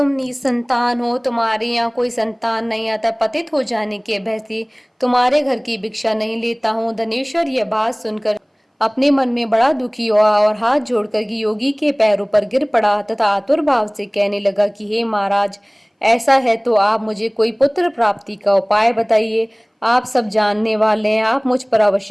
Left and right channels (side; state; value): both; identical; correlation 1.00